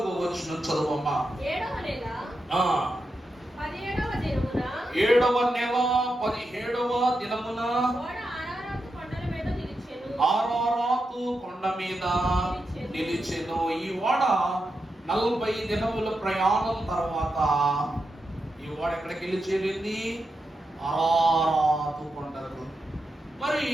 వచనం చదువమ్మా. 7వ నెల 17వ దినమున ఆరారాతు కొండ మీద నిలిచెను. ఈ ఓడ 40 దినముల ప్రయాణం తర్వాత ఈ ఓడ ఎక్కడికి వెళ్ళి చేరింది? ఆరారాతు కొండకు. మరి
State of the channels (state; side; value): normal; both; correlation 0.87